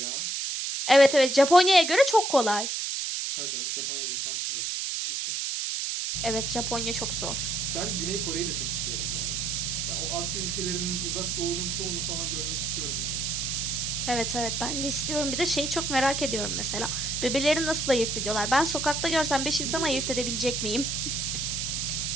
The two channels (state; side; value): noise; right; hiss, 1 dB below the sound